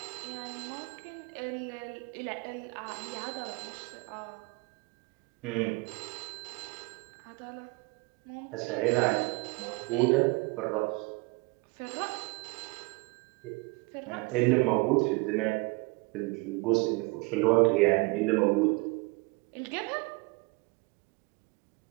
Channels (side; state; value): left; quieter; 27.3 dB